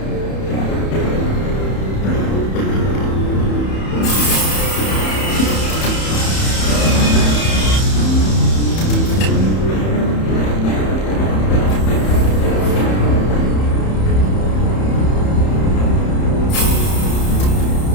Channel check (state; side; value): late; right; 31 ms